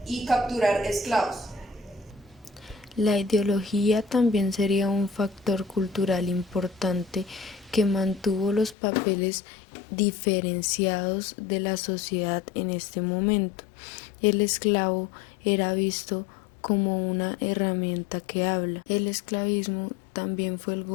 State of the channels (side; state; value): right; drops out; at 8.8 s